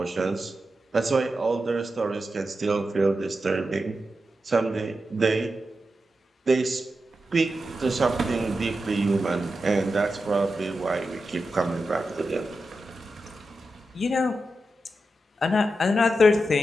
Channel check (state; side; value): normal; both; correlation 0.89